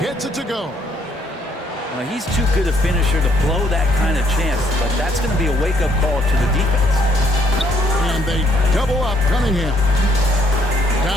gets it to go. Well, he's too good a finisher to blow that kind of chance, but that's going to be a wake-up call to the defense. And they double up Cunningham.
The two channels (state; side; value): normal; both; correlation 0.68